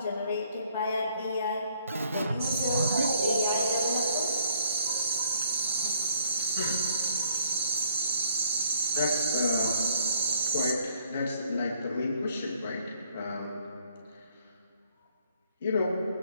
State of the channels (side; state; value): both; inverted; correlation -0.62